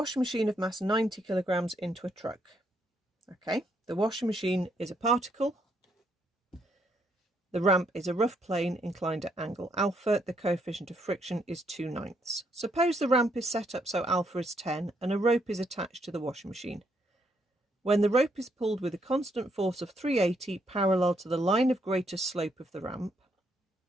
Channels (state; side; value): normal; both; correlation 0.74